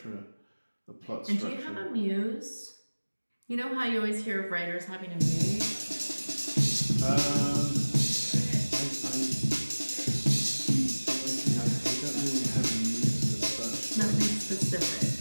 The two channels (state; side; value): inverted; both; correlation -1.00